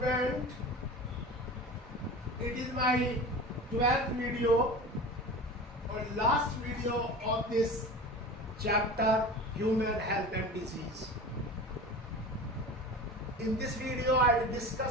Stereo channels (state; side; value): normal; both; correlation 0.34